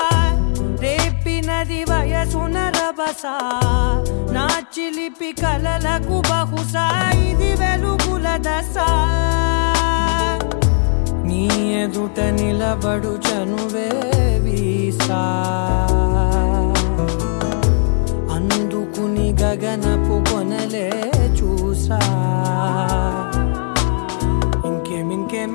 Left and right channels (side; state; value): right; silent; 68 dB below the other